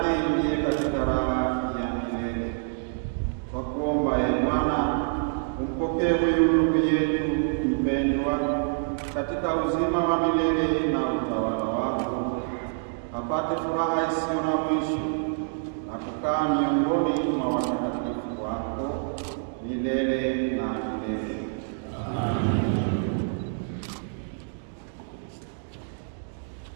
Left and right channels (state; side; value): silent; left; digital silence